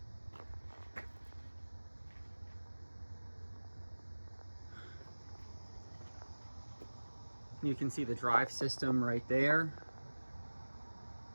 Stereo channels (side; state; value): both; inverted; correlation -1.00